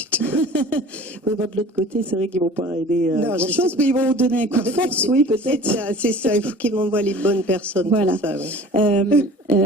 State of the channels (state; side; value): normal; both; correlation 0.44